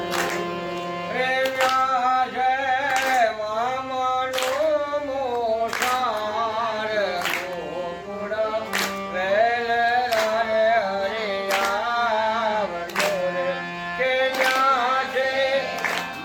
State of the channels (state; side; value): identical; both; correlation 1.00